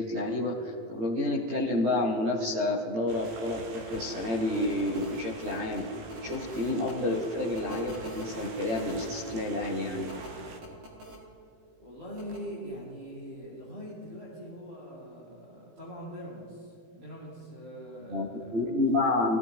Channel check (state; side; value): late; left; 18 ms